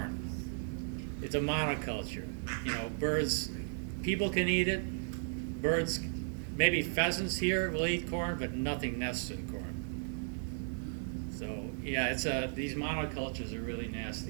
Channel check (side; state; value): left; silent; digital silence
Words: It's a monoculture. You know, birds, people can eat it. Birds, maybe pheasants here will eat corn, but nothing nests in corn. So yeah, it's these monocultures are really